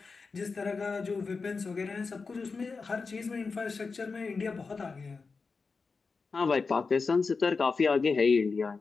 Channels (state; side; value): quieter; right; 4.5 dB